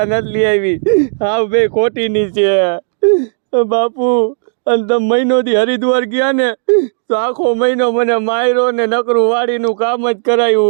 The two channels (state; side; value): silent; left; digital silence